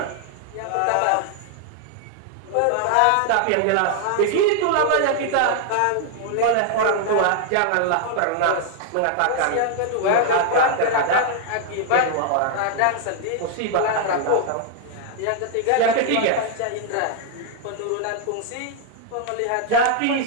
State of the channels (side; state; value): both; different; correlation 0.00